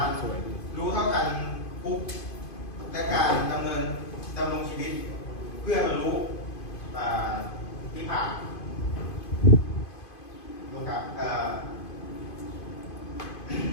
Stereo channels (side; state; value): right; late; 2.5 ms